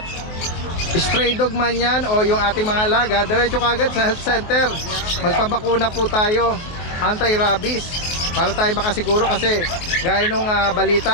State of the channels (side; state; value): right; late; 23 ms